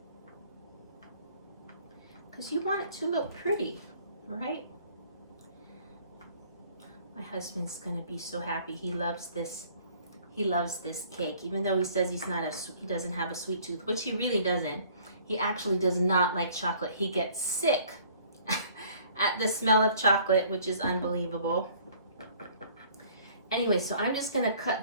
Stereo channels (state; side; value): inverted; both; correlation -0.55